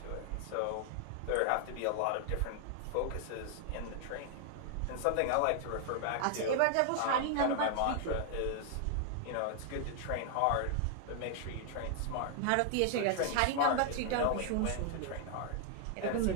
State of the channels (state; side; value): different; both; correlation 0.00